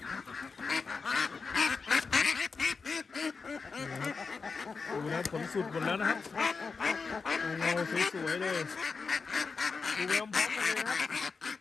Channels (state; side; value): quieter; right; 4.8 dB